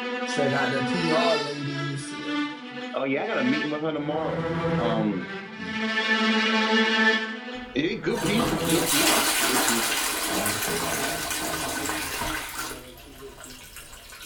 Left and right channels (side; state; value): both; identical; correlation 1.00